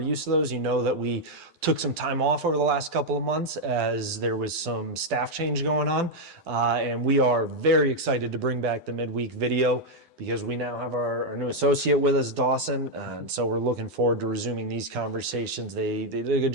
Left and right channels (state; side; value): late; left; 9.9 ms